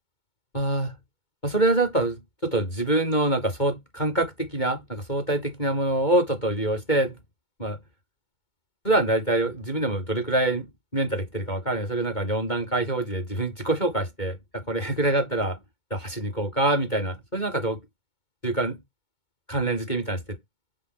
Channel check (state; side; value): late; right; 2.2 ms